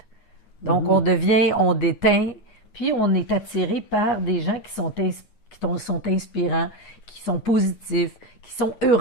Donc, on devient, on déteint, puis on est attiré par des gens qui sont inspirants, qui sont positifs, qui sont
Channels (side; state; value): right; late; 9.4 ms